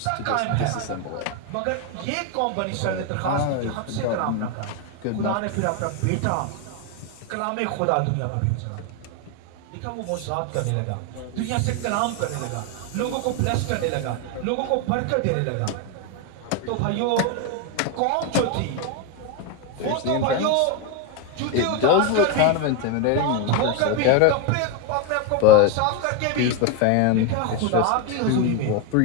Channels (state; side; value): different; both; correlation 0.02